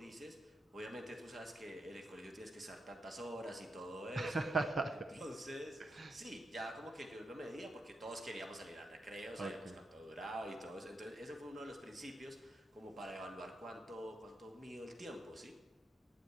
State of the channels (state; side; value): normal; both; correlation 0.83